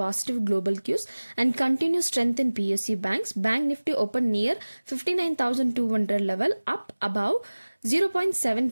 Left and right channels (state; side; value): inverted; both; correlation -1.00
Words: global cues and continued strength in PSU banks. Bank Nifty opened near 59,200 level, up above